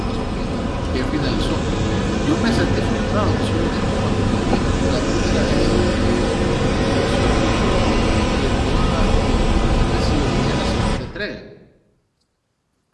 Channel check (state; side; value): identical; both; correlation 1.00